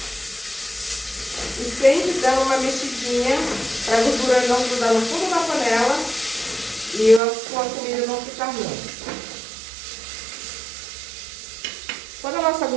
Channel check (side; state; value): left; drops out; at 7.2 s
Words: E sempre dando uma mexidinha para a gordura não grudar no fundo da panela e a sua comida não ficar ruim. Quando a nossa